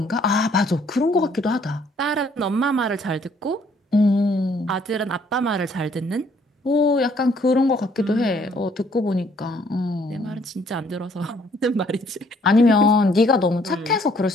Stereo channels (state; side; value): normal; both; correlation 0.63